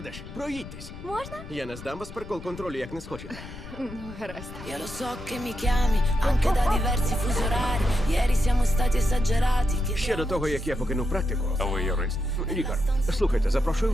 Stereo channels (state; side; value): noise; left; rumble, 13 dB below the sound